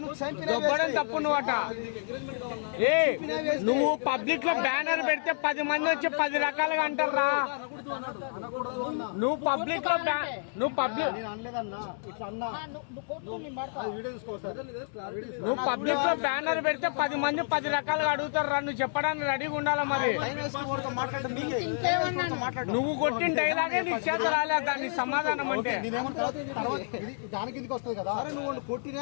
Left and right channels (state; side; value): silent; right; digital silence